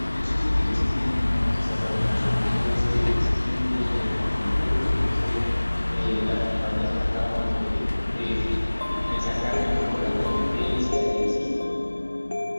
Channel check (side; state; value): both; inverted; correlation -1.00